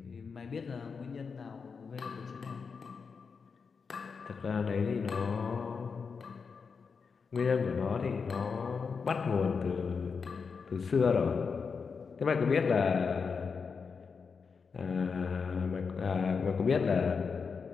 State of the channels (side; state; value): right; quieter; 5.4 dB